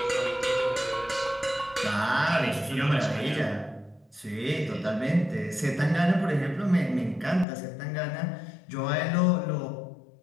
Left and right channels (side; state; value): right; drops out; at 7.5 s